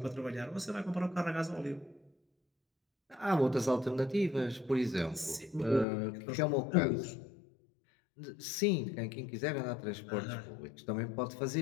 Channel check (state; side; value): drops out; right; at 5.9 s